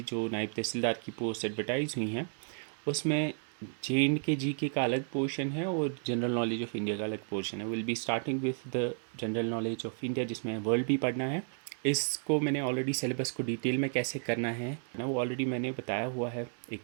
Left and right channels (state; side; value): silent; left; 56 dB below the other